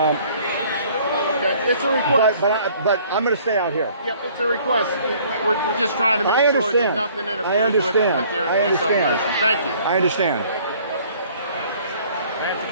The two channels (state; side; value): inverted; both; correlation -0.56